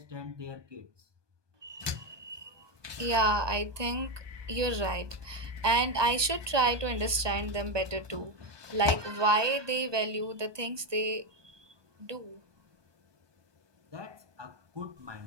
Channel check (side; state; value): left; late; 1.2 ms